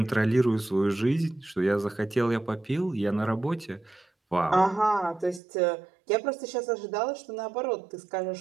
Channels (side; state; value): left; drops out; at 5.4 s